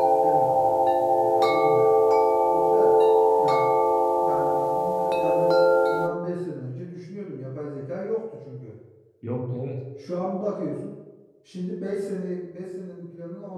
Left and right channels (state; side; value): identical; both; correlation 1.00